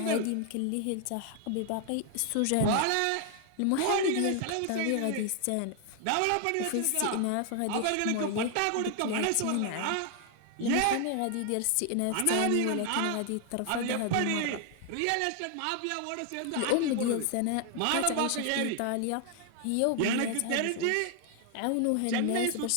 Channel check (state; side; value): different; both; correlation 0.00